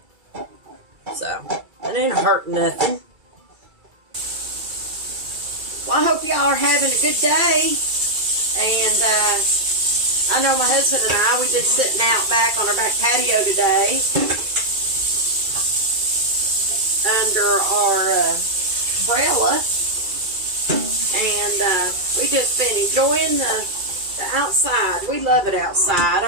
So, it ain't hurting nothing. Well, I hope y'all are having a good day. And, I know my husband and I, we've been sitting out back on our back patio today under our umbrella, and we just been enjoying the outside. We love it outside.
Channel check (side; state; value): left; late; 2.3 ms